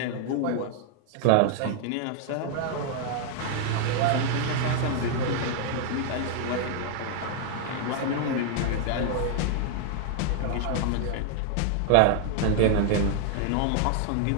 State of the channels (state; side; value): different; both; correlation -0.01